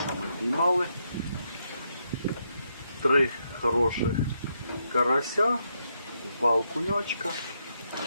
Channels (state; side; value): inverted; both; correlation -0.79